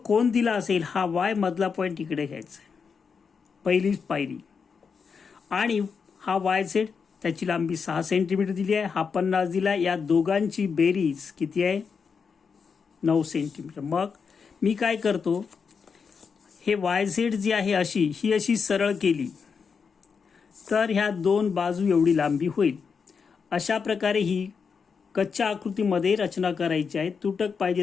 दिला असेल हा Y मधला पॉईंट इकडे घ्यायचा, पहिलीच पायरी. आणि हा YZ, त्याची लांबी 6 सेंटीमीटर दिली आहे, हा 50 दिला. या दोघांची बेरीज किती आहे? 9 सेंटीमीटर. मग मी काय करतो, हे वाय झेड जी आहे ही अशी सरळ केली तर ह्या दोन बाजू एवढी लांबी होईल. अशा प्रकारे ही कच्च्या आकृतीमध्ये रचना करायची आहे. तुटक पाहिजे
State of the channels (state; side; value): quieter; right; 5.8 dB